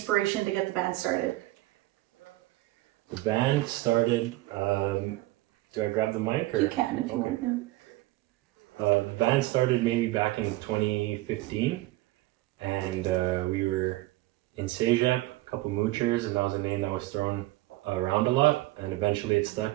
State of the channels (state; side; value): quieter; left; 18.6 dB